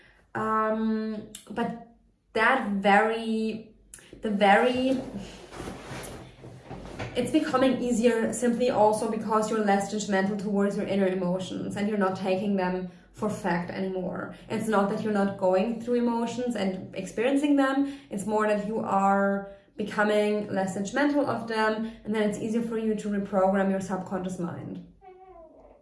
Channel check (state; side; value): identical; both; correlation 1.00